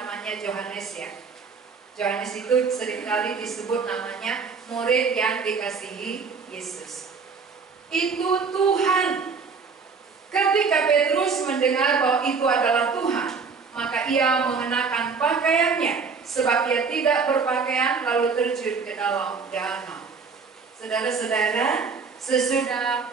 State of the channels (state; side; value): quieter; left; 5.2 dB